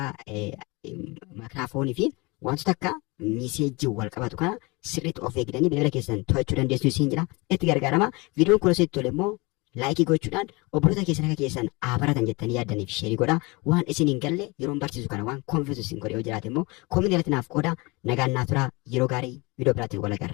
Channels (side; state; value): right; quieter; 25.9 dB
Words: maayikiraafoonii fi wantoota akka miseejii wal qabatu kana sirriitti of eegdanii bilbila keessan to'achuu dandeessu isin jedha. Itti gargaaramaa. Viidiyoon kun asitti tole immoo laayikii gochuudhaan obboloota keessan akka keessan baratan jettanii yaaddaniif sheerii godhaa. Waan isin hin galle yeroon barsiisu kana waan konfiisu isin godhe yoo jiraate immoo koominii irratti naaf qoodaa. Nagaan naaf turaa. Yeroo gaarii viidiyoo biraatiin wal